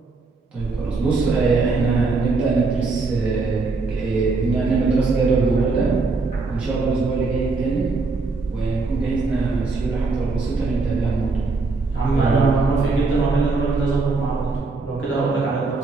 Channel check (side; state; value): left; quieter; 3.9 dB